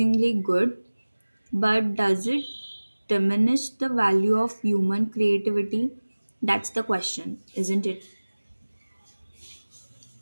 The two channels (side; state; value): both; inverted; correlation -1.00